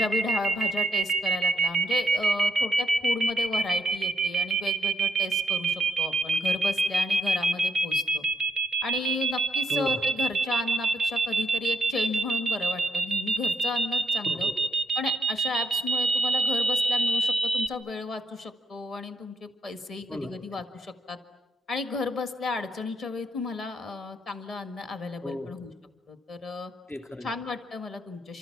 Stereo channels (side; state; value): both; normal; correlation 0.76